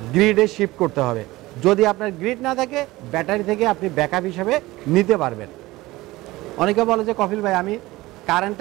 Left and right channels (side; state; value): left; quieter; 19.1 dB